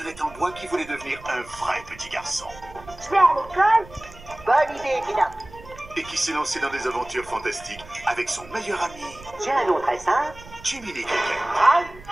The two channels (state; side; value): noise; right; rumble, 19 dB below the sound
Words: en bois qui voulait devenir un vrai petit garçon. Je vais à l'école. Bonne idée, Pina. Et qui s'est lancé dans des aventures fantastiques avec son meilleur ami, J'ai un nom très simple. Jiminy Cricket.